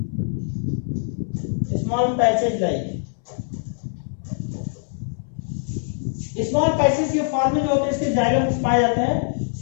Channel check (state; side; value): silent; right; 63 dB below the other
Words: small patches like small patches के फॉर्म में जो होते हैं इसके जाइलम पाए जाते हैं।